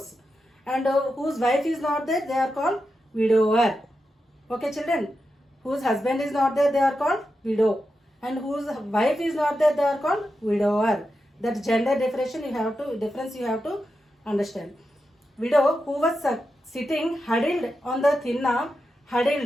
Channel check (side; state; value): both; normal; correlation 0.89